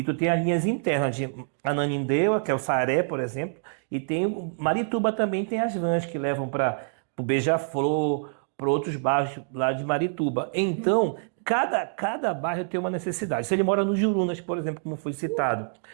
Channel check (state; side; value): silent; left; digital silence